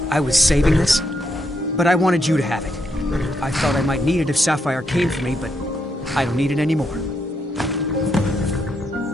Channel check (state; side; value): normal; both; correlation 0.79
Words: I was saving this, but I wanted you to have it. I thought I might need it if Sapphire came for me, but I don't need it anymore.